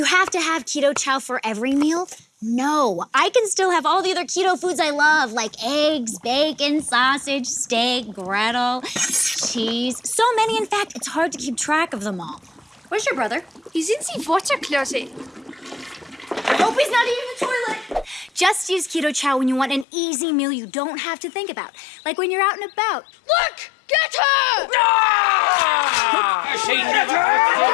have to have Keto Chow for every meal? No, I can still have all the other keto foods I love, like eggs, bacon, sausage, steak, griddle, cheese. So many, in fact, it's hard to keep track of them all. Where's your brother? He's in the water closet. I hope he's not eating the toilet. Just use Keto Chow when you want an easy meal you don't have to think about. Like when you're out and about. Look! Get her! I say never!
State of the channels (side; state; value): right; drops out; at 19.9 s